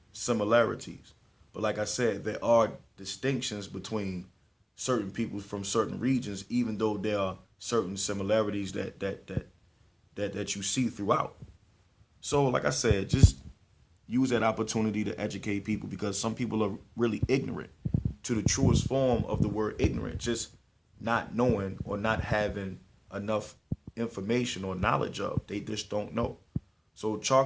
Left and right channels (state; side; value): identical; both; correlation 1.00